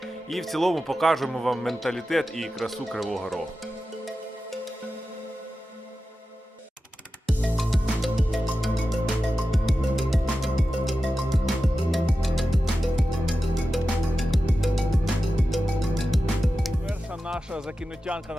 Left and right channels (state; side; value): normal; both; correlation 0.93